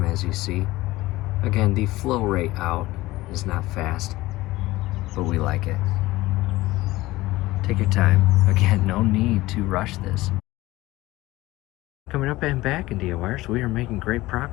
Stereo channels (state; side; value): quieter; right; 18.4 dB